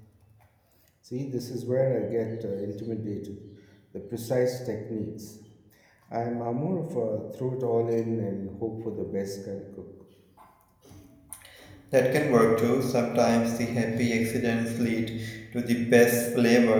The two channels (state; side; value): identical; both; correlation 1.00